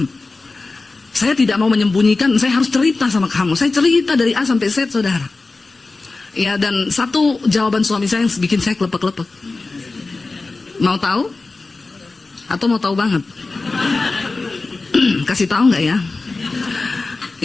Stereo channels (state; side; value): quieter; right; 3.6 dB